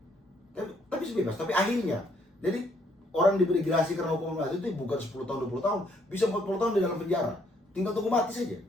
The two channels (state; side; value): normal; both; correlation 0.68